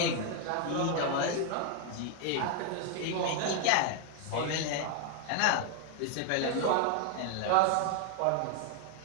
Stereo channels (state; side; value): different; both; correlation 0.00